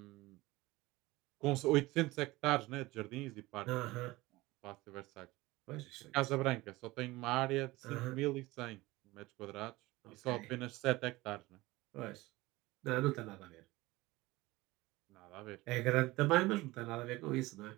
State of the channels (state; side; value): quieter; left; 20.0 dB